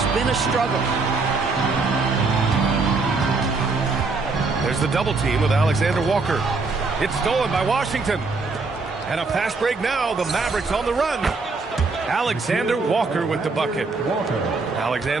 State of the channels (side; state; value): left; quieter; 4.0 dB